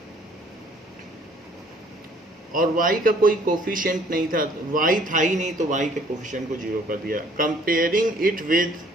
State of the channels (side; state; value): both; normal; correlation 0.59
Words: और y का कोई कोफिशिएंट नहीं था, y था ही नहीं, तो y के कोफिशिएंट को 0 कर दिया। Comparing it with